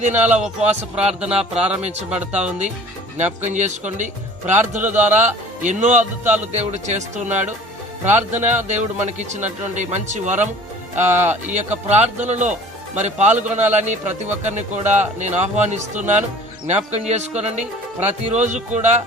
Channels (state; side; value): normal; both; correlation 0.47